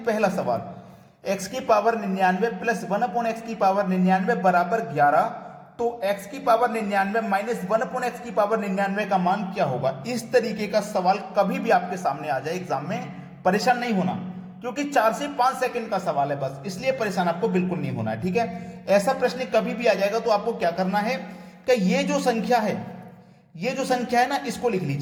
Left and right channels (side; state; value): both; identical; correlation 1.00